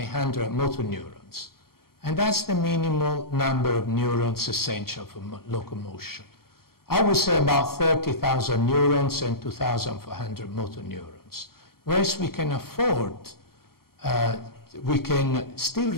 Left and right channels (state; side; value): late; right; 0.94 ms